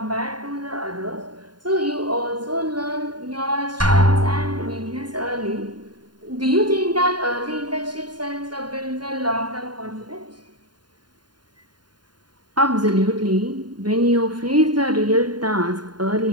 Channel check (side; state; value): left; late; 0.70 ms